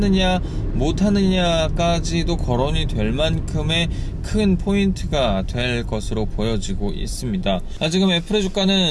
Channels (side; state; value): both; identical; correlation 1.00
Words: 못하느냐까지도 거론이 될 만큼의 큰 포인트가 될 것으로 보여지고 있습니다. 지금 애플의